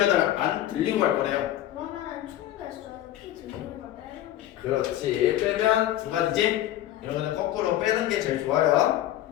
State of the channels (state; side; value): quieter; right; 13.3 dB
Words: 갈 거래요. 그러면은 총 개수는 P 들리는 걸 빼는 거죠. 그렇지. 빼면 두 가지지. 이런 거는 거꾸로 빼는 게 제일 좋아요.